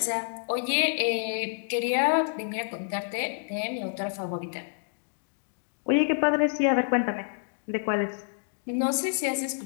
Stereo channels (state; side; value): silent; right; digital silence